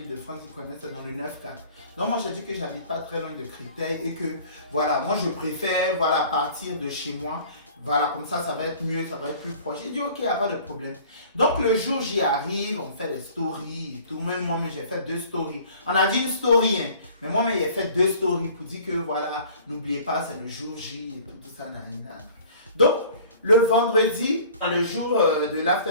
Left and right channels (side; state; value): both; inverted; correlation -0.49